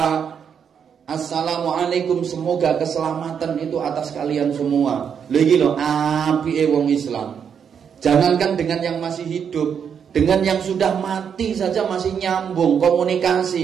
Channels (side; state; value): left; quieter; 7.5 dB